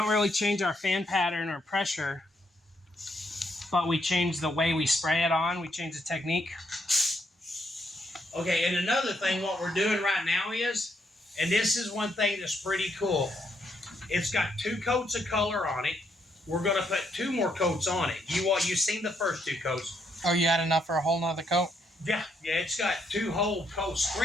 really change our fan pattern or pressure, but we change the way we spray it on, we change the technique. Okay, and another thing, what we're doing right now is, and this is one thing that's pretty cool, it's got 2 coats of color on it. We're going to put 2 more coats on it. You've seen the first 2 coats. Oh, you had enough for a whole nother coat? Yeah, it's got 2 whole coats,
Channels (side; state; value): both; normal; correlation 0.75